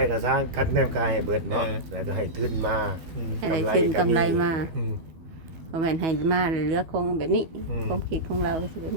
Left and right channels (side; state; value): left; late; 12 ms